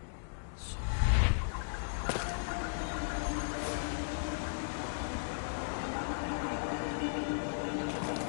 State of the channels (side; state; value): right; silent; digital silence